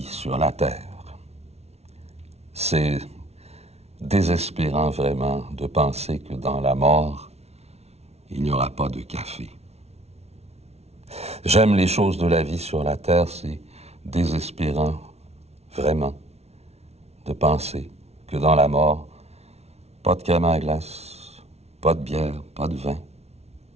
sur la terre. C'est désespérant vraiment de penser que dans la mort, il n'y aura pas de café. J'aime les choses de la vie sur la terre, c'est désespérant vraiment de penser que dans la mort, pas de crème à glace, pas de bière, pas de vin,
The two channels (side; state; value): left; late; 0.31 ms